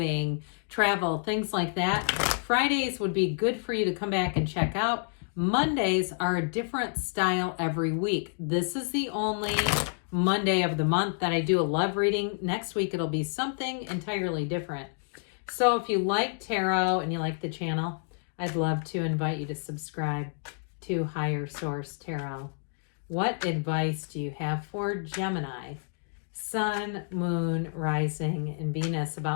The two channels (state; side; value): silent; right; digital silence